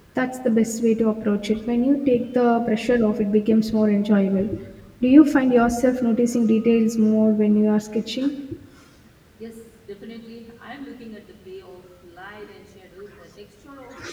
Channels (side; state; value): both; identical; correlation 1.00